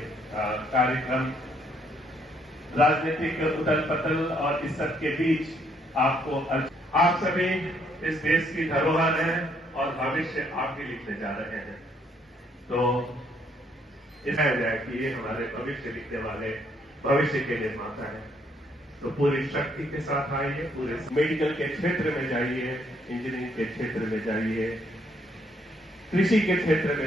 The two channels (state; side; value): normal; both; correlation 0.69